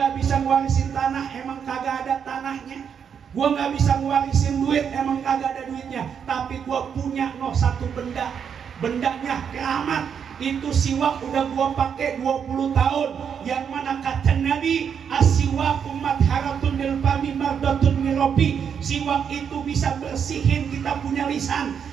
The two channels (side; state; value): left; quieter; 7.5 dB